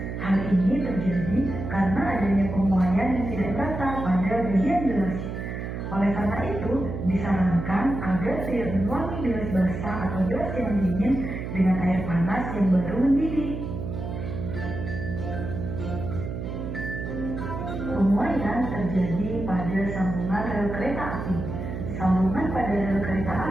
Hal ini terjadi karena adanya pemuaian yang tidak rata pada bagian gelas. Oleh karena itu, disarankan agar tidak menuangi gelas basah atau gelas yang dingin dengan air panas yang baru mendidih. Pemuaian terjadi pada sambungan rel kereta api. Sambungan pada rel kereta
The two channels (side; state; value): right; noise; hum, 6 dB below the sound